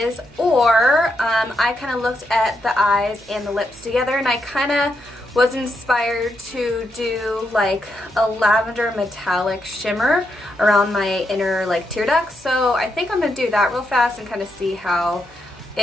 or I kind of looked at the eyes and the lips together, and I kind of was inspired to do like a lavender metallic shimmer around my inner like tear ducts. So I think I'm going to do that real fast and kind of see how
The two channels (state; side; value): noise; right; hum, 26 dB below the sound